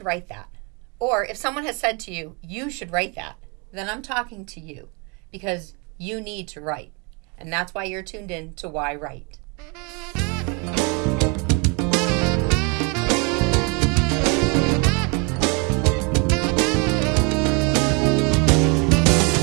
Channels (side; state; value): left; quieter; 31.8 dB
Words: write that, or if someone has said to you, you should write that, then I'm talking to you because you need to write. And that's why you're tuned in to yWrite.